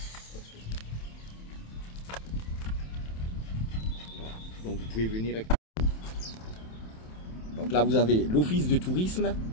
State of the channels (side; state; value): right; late; 27 ms